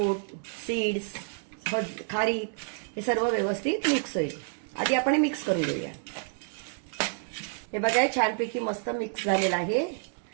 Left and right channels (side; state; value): left; silent; 59 dB below the other